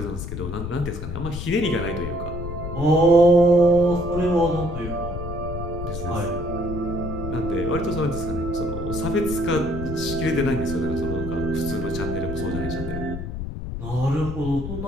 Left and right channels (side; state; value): left; noise; rumble, 6 dB below the sound